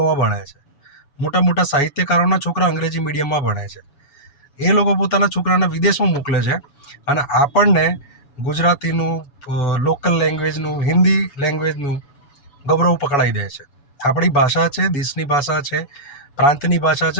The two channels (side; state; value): right; late; 7.1 ms